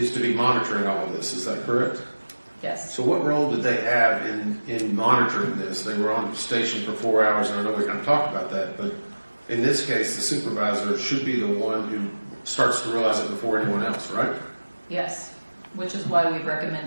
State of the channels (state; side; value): inverted; both; correlation -1.00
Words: to be monitoring all of this. Is that correct? Yes. So what role did they have in monitoring this? They were on station for 4 hours, and I know we kind of talked about that, but in this case, the supervisor should be the one who starts to realize it before anyone else, right? Yes, which is why we've